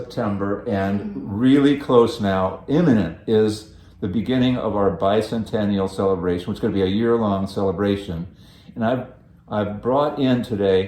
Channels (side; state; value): both; identical; correlation 1.00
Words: and really close now. Imminent is the beginning of our bicentennial celebration, which is going to be a year-long celebration. And I've brought in